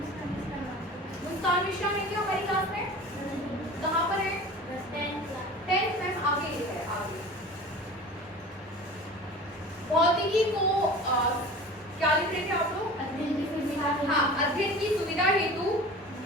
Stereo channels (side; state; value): both; normal; correlation 0.38